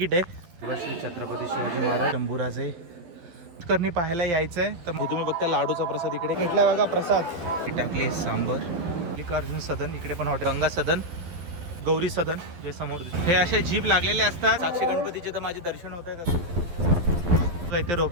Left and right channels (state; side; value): late; left; 12 ms